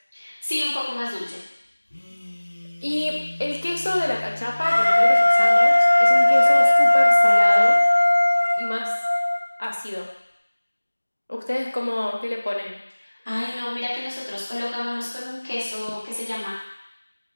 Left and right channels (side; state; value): both; inverted; correlation -1.00